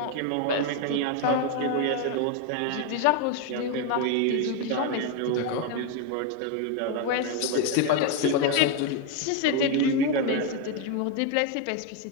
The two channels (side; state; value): both; different; correlation 0.01